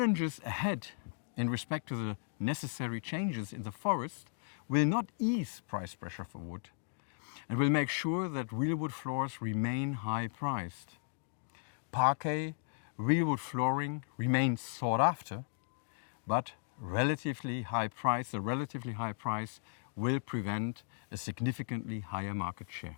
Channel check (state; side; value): silent; right; digital silence